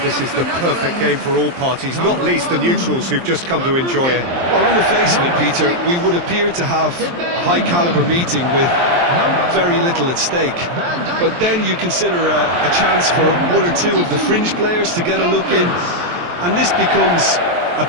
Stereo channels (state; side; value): late; left; 23 ms